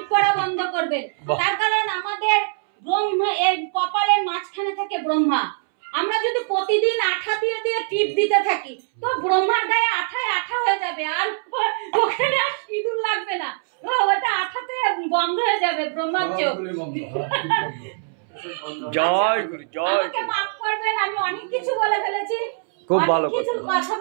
করা বন্ধ করবেন। তার কারণ আমাদের ব্রহ্মা, এই কপালের মাঝখানে থাকে ব্রহ্মা। আমরা যদি প্রতিদিন আঠা দিয়ে টিপ দিতে থাকি, তো ব্রহ্মার গায়ে আঠায় আঠা হয়ে যাবে, আর ওখানে আর সিঁদুর লাগবে না, ওটা আঠাতে বন্ধ হয়ে যাবে ব্রহ্মার চোখ। জয় গুরু, জয়। আমাকে মাফ করবেন, আমি অনেক কিছু বলে ফেলেছি, খুব ভালো কথা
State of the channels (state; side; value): silent; left; 64 dB below the other